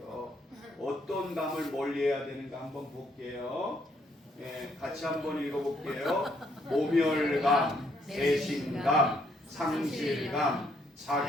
어떤 감을 멀리해야 되는가 한번 볼게요. 예, 같이 한번 읽어볼게요. 모멸감, 배신감, 상실감,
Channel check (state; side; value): normal; both; correlation 0.70